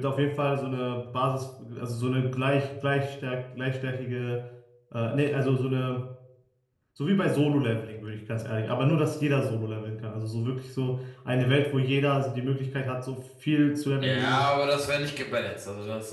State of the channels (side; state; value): both; identical; correlation 1.00